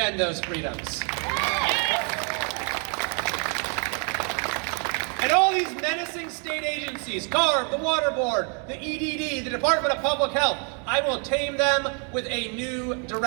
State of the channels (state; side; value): quieter; left; 39.1 dB